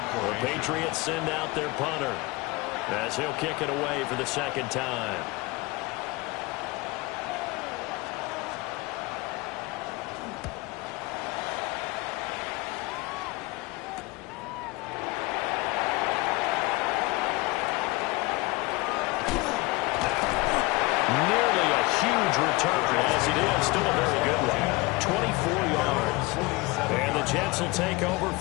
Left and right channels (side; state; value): right; quieter; 23.2 dB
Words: The Patriots send out their punter as he'll kick it away for the second time. Nearly a huge return, as it is still a very good one. 24 yards. And the Jets will take over